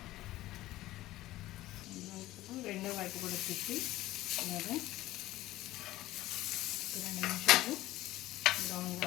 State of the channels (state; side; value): quieter; right; 16.3 dB